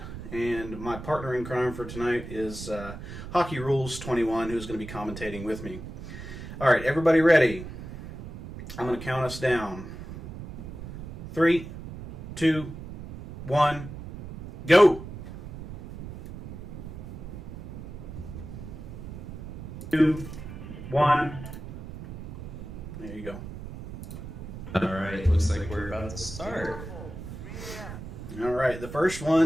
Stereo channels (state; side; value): noise; right; rumble, 11 dB below the sound